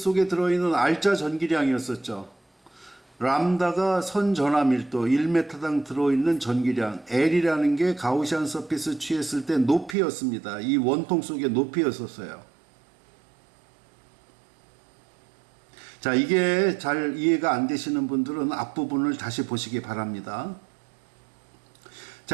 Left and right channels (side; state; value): left; drops out; at 10.0 s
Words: 들어있는 R자 전기량이었었죠. 람다가 선전하 밀도 1m당 들어있는 전기량, L이라는 게 가우시안 서피스 취했을 때 높이였습니다. 이 원통 속의 높이였었어요. 자, 이게 잘 이해가 안 되시는 분들은 앞부분을 다시 보시기 바랍니다.